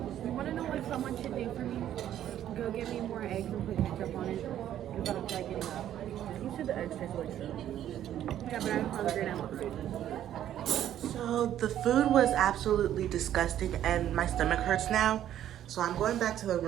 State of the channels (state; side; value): quieter; left; 11.4 dB